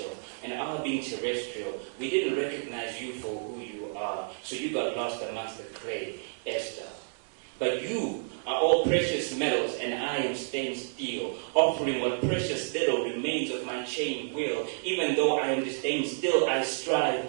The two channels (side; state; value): left; silent; digital silence